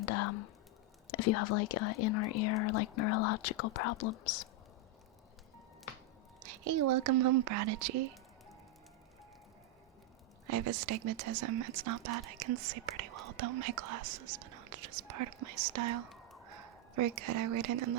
if you have like inner ear or like neurological problems. Hey, welcome home, Prodigy. I have astigmatism. It's not bad. I can see pretty well without my glasses, but no, it's just part of my style. Very good. I wear it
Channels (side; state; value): both; normal; correlation 0.01